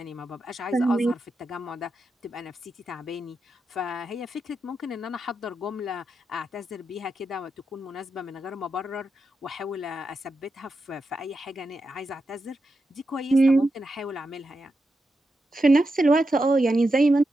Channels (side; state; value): both; normal; correlation 0.87